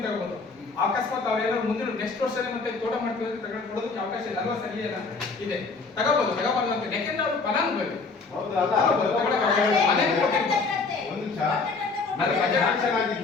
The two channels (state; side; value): quieter; right; 4.2 dB